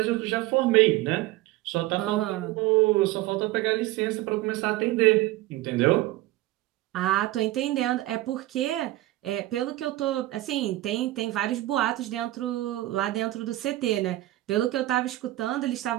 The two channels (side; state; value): left; quieter; 16.9 dB